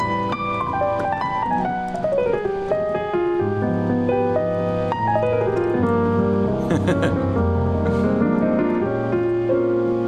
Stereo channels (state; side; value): identical; both; correlation 1.00